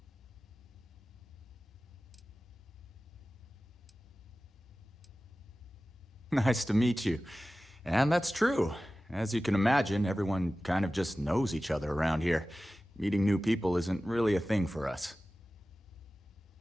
Nice to meet you. And that's true. As you can imagine, everyone kind of just knows each other around here. Meeting new people isn't really a thing for us.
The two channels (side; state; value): both; normal; correlation 0.96